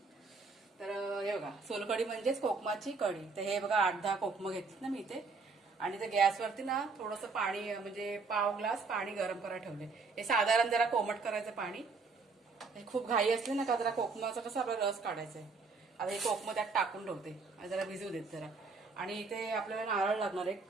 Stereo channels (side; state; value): left; quieter; 4.4 dB